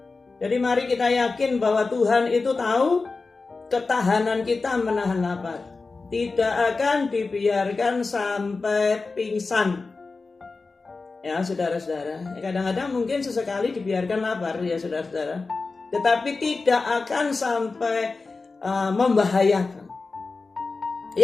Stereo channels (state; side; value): quieter; right; 4.0 dB